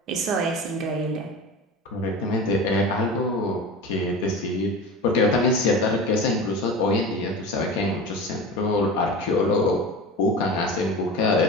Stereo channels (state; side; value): normal; both; correlation 0.31